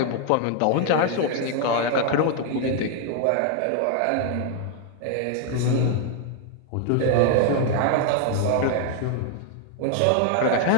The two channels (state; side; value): different; both; correlation 0.00